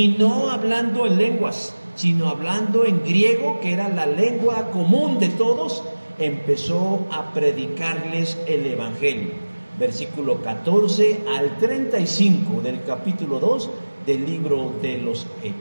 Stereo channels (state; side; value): inverted; both; correlation -1.00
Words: no hablando en lenguas, sino hablando en griego, que era la lengua común de todos, empezó a predicarles el Evangelio. Versículo 14 al 35 del capítulo 2 del libro de los